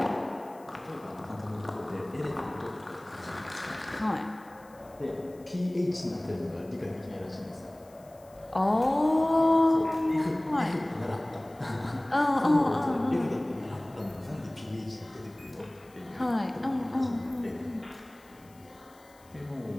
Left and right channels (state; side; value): noise; left; hiss, 28 dB below the sound